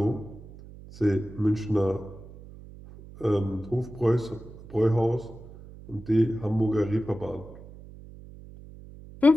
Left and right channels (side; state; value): right; noise; hum, 17 dB below the sound